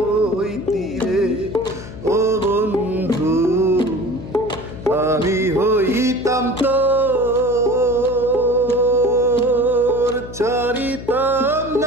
হইতি রে ও বন্ধু, আমি হইতাম তোর, ছাড়িতাম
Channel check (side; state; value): left; noise; hum, 13 dB below the sound